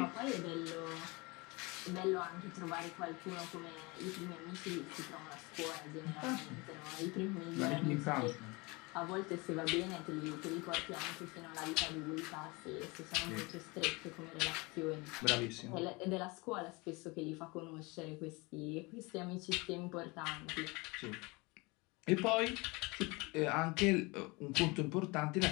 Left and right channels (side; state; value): right; quieter; 25.9 dB